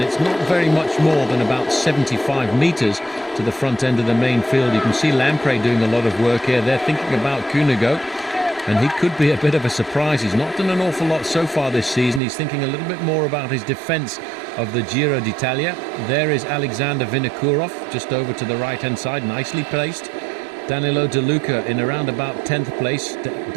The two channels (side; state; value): left; drops out; at 12.2 s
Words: it's not very much more than about 75 metres to the front end of the main field. You can see Lampre doing a lot of work here. They're thinking about Cunego, and he could be a bit of a surprise. He's not done an awful lot so far this season. He's thinking a little bit more about his defence of the Giro d'Italia. There is Alexander Vinokourov just over to the right-hand side, nicely placed. Danielo De Luca in around about 10th place.